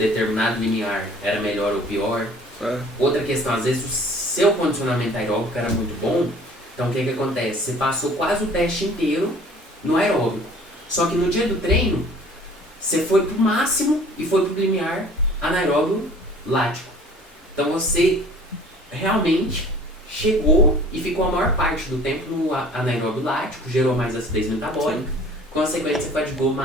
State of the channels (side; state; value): both; normal; correlation 0.49